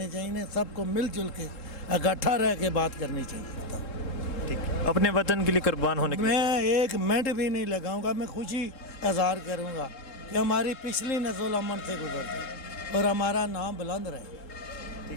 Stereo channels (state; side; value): late; right; 3.7 ms